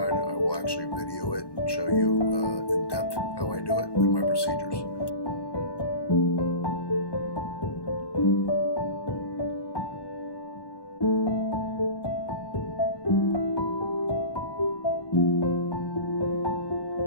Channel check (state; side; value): late; right; 1.1 ms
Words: I will actually video it and show you in depth how I do it and my procedures.